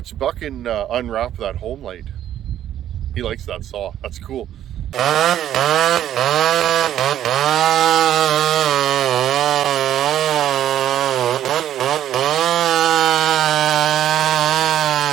Buckin unwrap that home light. He likes that saw. That's cool.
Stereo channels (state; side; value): quieter; left; 11.3 dB